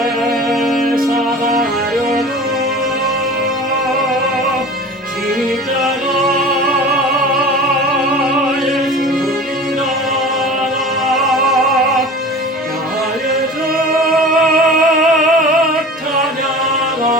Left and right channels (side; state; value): both; normal; correlation 0.38